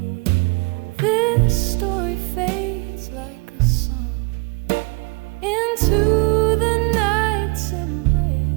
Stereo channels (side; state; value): left; quieter; 26.8 dB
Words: This story fades like a song into the night's